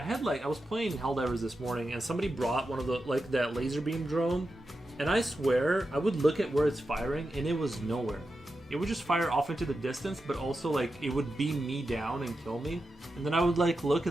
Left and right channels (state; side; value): normal; both; correlation 0.89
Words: was playing Helldivers this morning, and somebody brought one of the that laser beam drone, and I swear I would look at where it's firing, and it was nowhere. It would just fire off into the distance, but also like it would beam me down and kill me, and then I would like look,